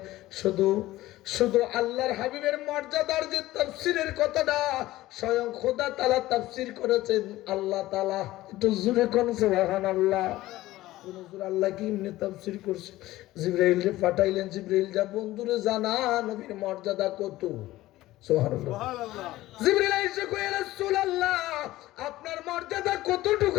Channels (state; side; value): quieter; right; 16.6 dB